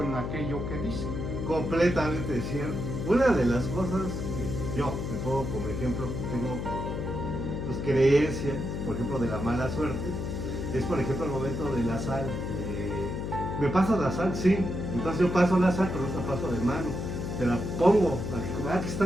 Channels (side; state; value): left; noise; hum, 4 dB below the sound